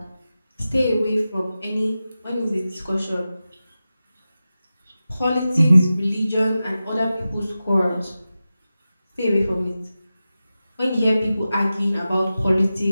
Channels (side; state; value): both; inverted; correlation -0.94